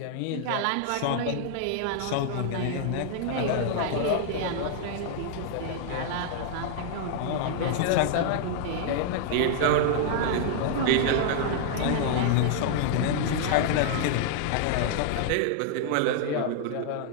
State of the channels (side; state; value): both; different; correlation -0.01